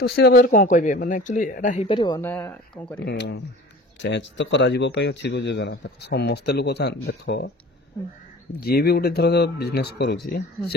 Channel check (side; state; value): both; normal; correlation 0.42